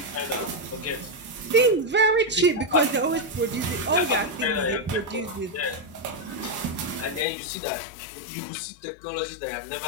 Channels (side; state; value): right; drops out; at 7.2 s